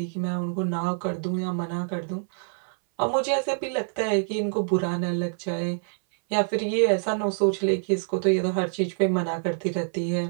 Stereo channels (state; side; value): silent; left; 61 dB below the other